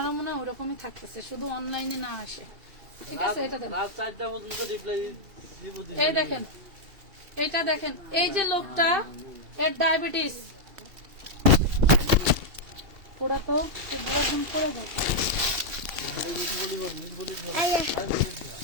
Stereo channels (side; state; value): left; late; 2.7 ms